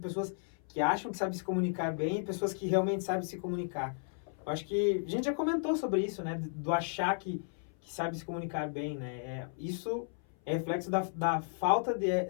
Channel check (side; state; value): right; silent; 55 dB below the other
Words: que acham que sabem se comunicar bem e pessoas que realmente sabem se comunicar? Eu acho que a gente já comentou sobre isso, né? Do achar que sabe se comunicar bem, né? Isso é reflexo da falta